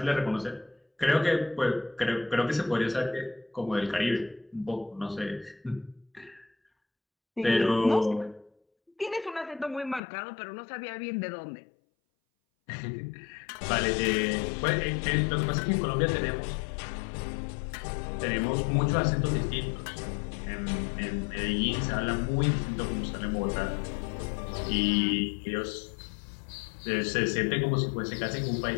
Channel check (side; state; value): right; drops out; at 10.0 s